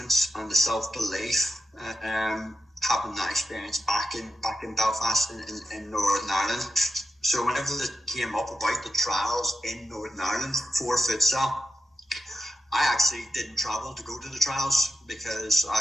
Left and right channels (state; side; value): normal; both; correlation 0.91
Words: and the self-belief. Having that experience back in Belfast in Northern Ireland. So whenever it came up about the trials in Northern Ireland for futsal, I actually didn't travel to go to the trials because